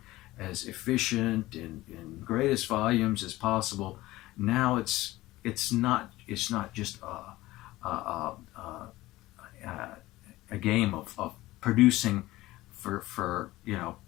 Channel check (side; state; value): right; quieter; 17.8 dB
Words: as efficient in greatest volumes as possible. Now it's not just a game of producing for